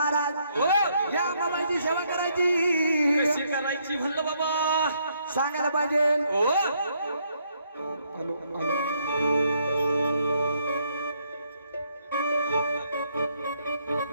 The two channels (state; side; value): inverted; both; correlation -0.72